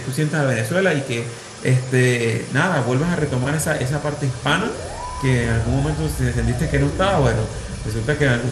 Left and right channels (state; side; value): identical; both; correlation 1.00